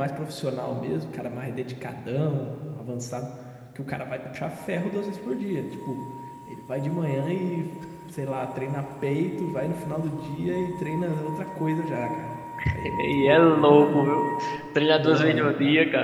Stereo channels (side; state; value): both; identical; correlation 1.00